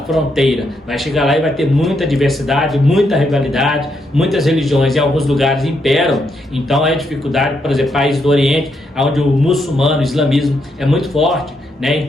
fronteira. Vai chegar lá e vai ter muita diversidade, muita rivalidade, muitas religiões em alguns lugares imperam. Então é dificuldade, por exemplo, países do Oriente, onde o muçulmano, o islamismo é muito forte, né?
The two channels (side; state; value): both; normal; correlation 0.79